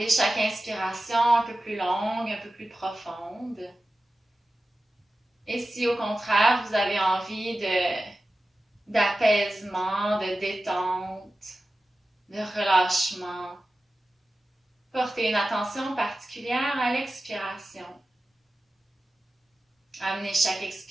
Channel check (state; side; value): normal; both; correlation 0.94